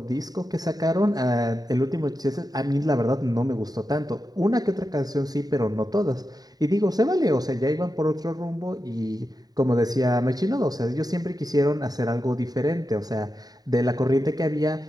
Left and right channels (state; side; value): late; left; 0.18 ms